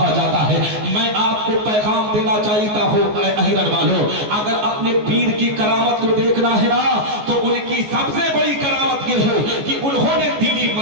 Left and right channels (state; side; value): late; left; 14 ms